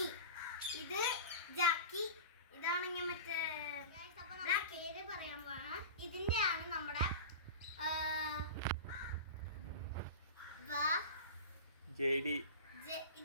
ഇത് ജാക്കി, ഇതാണെങ്കിൽ മറ്റേ പേര് പറയാൻ പോണ. ഇതിന്റെ ആണ് നമ്മുടെ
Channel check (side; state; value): both; inverted; correlation -0.30